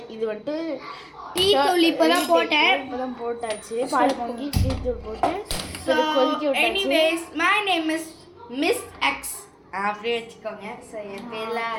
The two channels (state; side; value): identical; both; correlation 1.00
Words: இது வந்துட்டு டீ தூள் இப்போ தான் போட்டாச்சு. பால் பொங்கி டீ தூள் போட்டு கொதிக்க விட்டாச்சு. Anyways my name is miss X அப்படியே வச்சுக்கோங்க. ஸோ என் பேர்லாம்